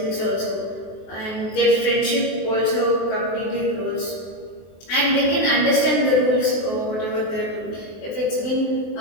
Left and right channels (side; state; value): right; late; 23 ms